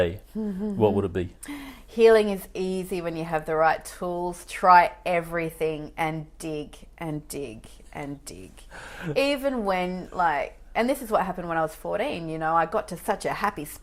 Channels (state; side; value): identical; both; correlation 1.00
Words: what would it be? Healing is easy when you have the right tools. Try everything and dig and dig and dig. Even when, and this is what happened when I was 14, I got to such a happy